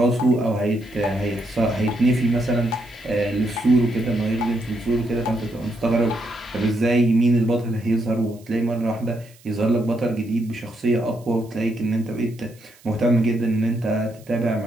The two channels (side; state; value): right; noise; hiss, 27 dB below the sound